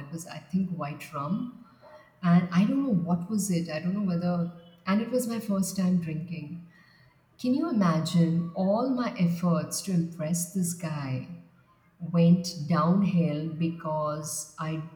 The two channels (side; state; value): both; identical; correlation 1.00